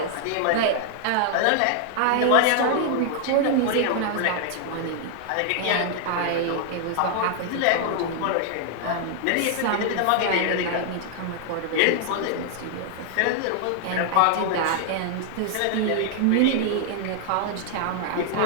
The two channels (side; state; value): both; different; correlation 0.00